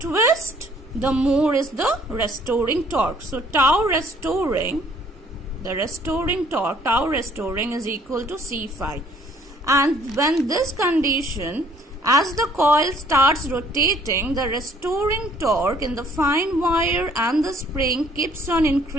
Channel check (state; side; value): normal; both; correlation 0.59